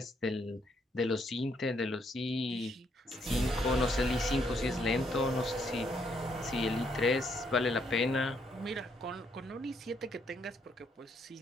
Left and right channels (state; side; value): normal; both; correlation 0.72